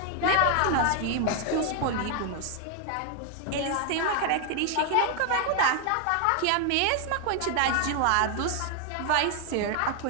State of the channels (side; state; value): both; different; correlation 0.00